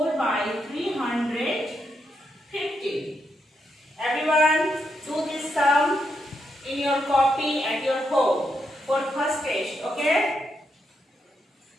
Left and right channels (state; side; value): normal; both; correlation 0.81